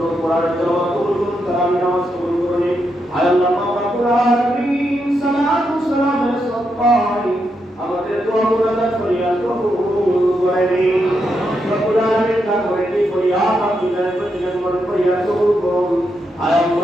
কোরআন তেলাওয়াত কবুল করুন, তারাবি নামাজ কবুল করুন। আয় আল্লাহ মাওলা কুরআন সালাতু সালামের সদকায় আমাদের দোয়া মুরাদ ফরিয়াদ কবুল করে নিন। রব্বুল আলামিন তা করে কি ফরিয়াদ আপনি জানেন প্রতিজন ফরিয়াদ কবুল করুন। আয়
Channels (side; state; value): both; normal; correlation 0.82